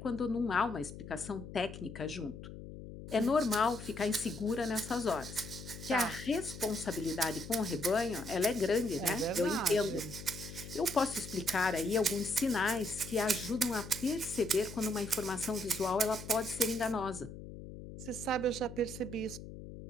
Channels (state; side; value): noise; left; hum, 12 dB below the sound